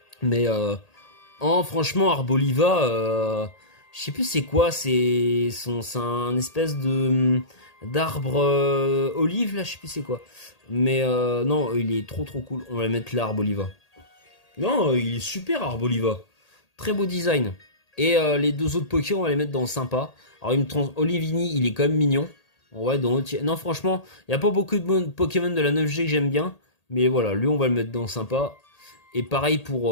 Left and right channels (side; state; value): right; late; 1.8 ms